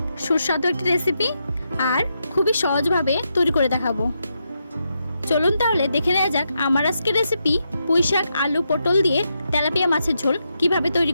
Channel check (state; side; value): inverted; both; correlation -0.83